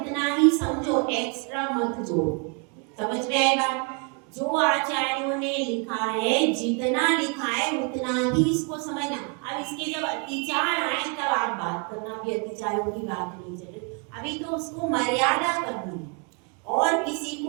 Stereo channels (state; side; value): quieter; left; 35.1 dB